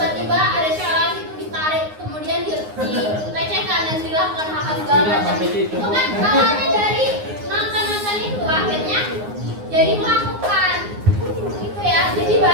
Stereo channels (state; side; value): late; left; 9.6 ms